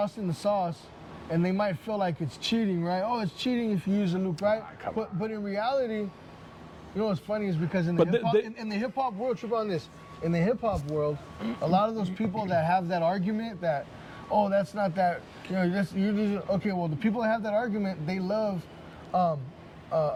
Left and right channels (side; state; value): both; identical; correlation 1.00